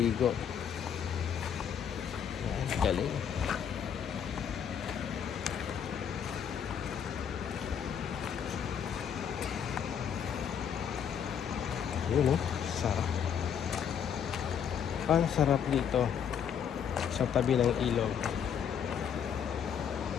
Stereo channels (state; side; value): quieter; right; 8.0 dB